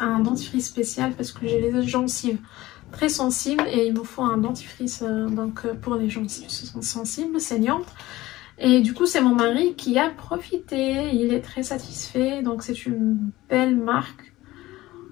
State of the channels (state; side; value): quieter; right; 17.6 dB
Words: dentifrice spécial parce que j'ai les gencives très sensibles et il me faut un dentifrice pour les gencives sensibles, saignantes. Et du coup, c'est mon mari qui a profité. Il est très satisfait. Donc, c'est une belle marque.